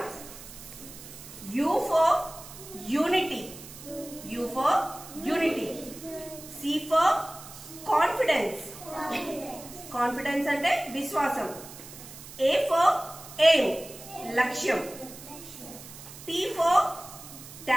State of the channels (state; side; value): noise; right; hiss, 15 dB below the sound